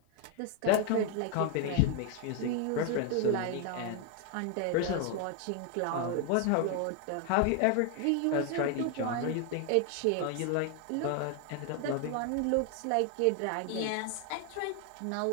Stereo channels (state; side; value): different; both; correlation 0.00